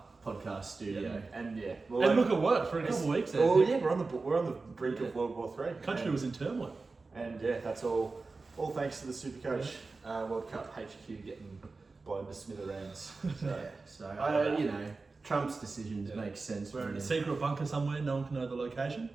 podcast studio. And And look, it worked for a couple of weeks there. Oh yeah, we're on the brink of World War III. The country was in turmoil. And yeah, that's all thanks to the Supercoach World Cup HQ getting blown to smithereens. So Trump's decisions make sense. We're in a secret bunker somewhere, no one can know the location.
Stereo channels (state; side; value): quieter; left; 3.9 dB